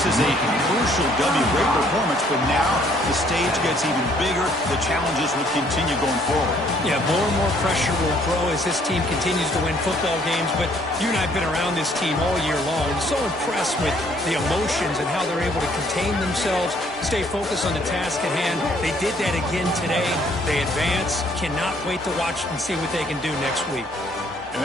is a crucial W. Great performance, but now the stage gets even bigger. The challenges will continue going forward. Yeah, more and more pressure will grow as this team continues to win football games. But you and I have been around this team all year long. I'm so impressed with the emotions and how they're able to contain themselves, stay focused on the task at hand. They did that again today. They advance. Cannot wait to watch and see what they can do next week. And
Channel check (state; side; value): normal; both; correlation 0.63